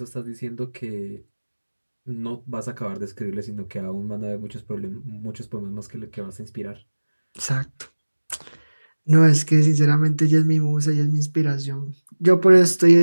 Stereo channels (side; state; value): both; inverted; correlation -1.00